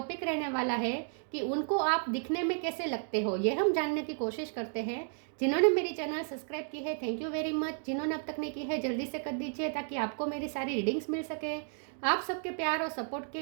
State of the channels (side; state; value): left; silent; 56 dB below the other